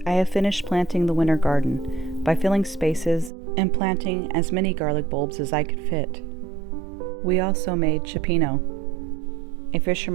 I have finished planting the winter garden by filling spaces and planting as many garlic bulbs as I could fit. We also made Cioppino, a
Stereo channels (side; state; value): left; drops out; at 3.3 s